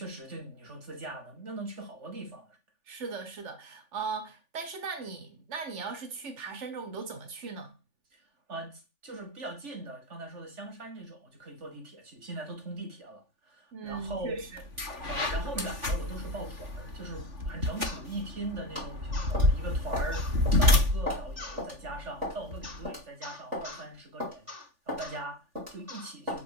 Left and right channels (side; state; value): left; late; 3.4 ms